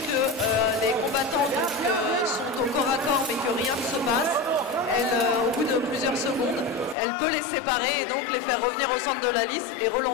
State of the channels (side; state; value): right; drops out; at 7.0 s